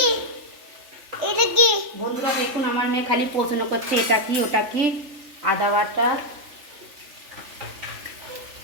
বন্ধুরা দেখুন, আমার মেয়ে খালি প্রশ্ন করছে এটা কি ওটা কি। আদা বাটা,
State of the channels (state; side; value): late; left; 3.4 ms